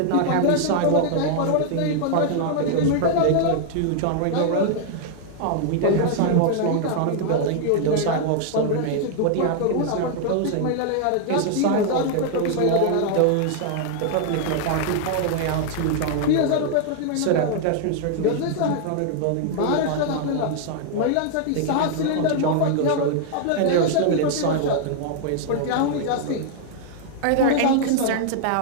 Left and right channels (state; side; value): different; both; correlation 0.00